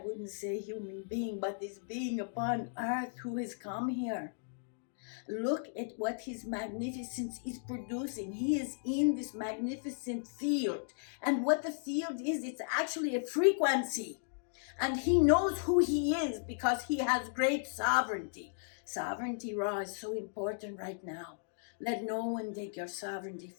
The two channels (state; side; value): silent; right; digital silence